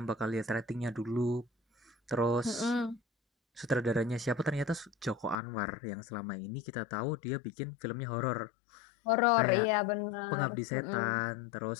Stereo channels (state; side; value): drops out; right; at 5.4 s